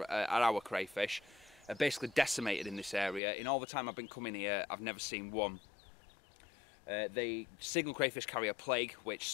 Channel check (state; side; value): drops out; right; at 3.2 s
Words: our crayfish, are basically decimated in this area. In all the time I've been coming here, I've never seen one. The signal crayfish carry a plague which